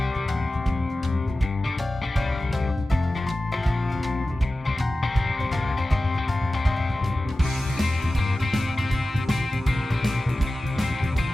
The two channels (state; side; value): normal; both; correlation 0.95